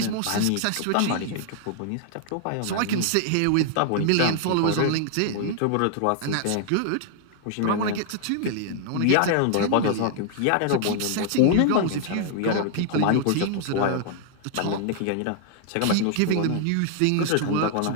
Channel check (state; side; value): different; both; correlation 0.00